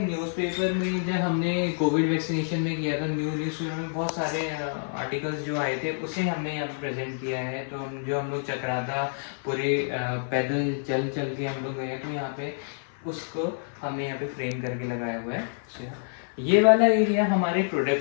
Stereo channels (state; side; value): silent; right; 56 dB below the other